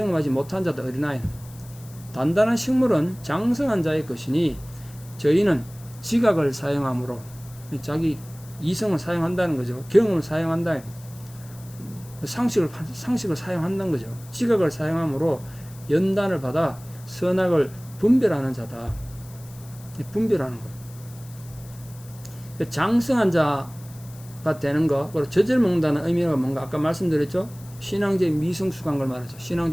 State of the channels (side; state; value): left; noise; hiss, 22 dB below the sound